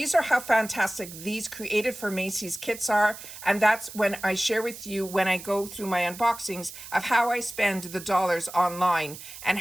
are how fantastic these created for Macys kits are. And that's when I share with you when I go through my unboxings of how I spend the dollars online and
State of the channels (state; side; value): noise; right; hiss, 14 dB below the sound